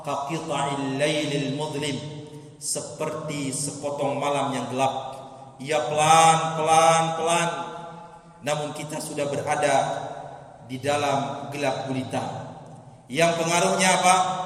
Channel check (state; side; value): identical; both; correlation 1.00